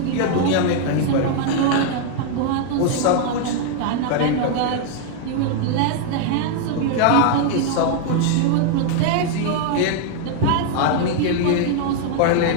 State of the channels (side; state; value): both; different; correlation 0.00